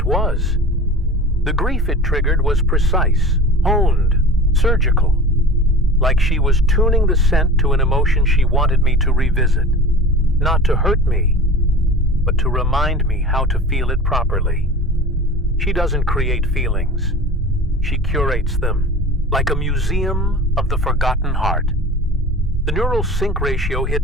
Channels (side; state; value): both; normal; correlation 0.37